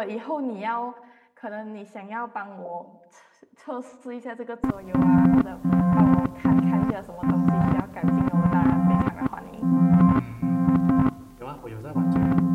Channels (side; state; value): both; identical; correlation 1.00